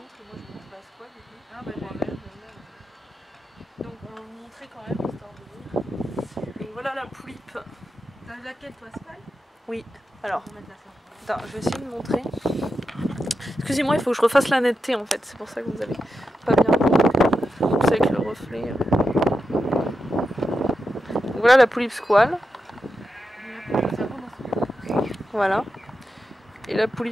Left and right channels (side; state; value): both; normal; correlation 0.88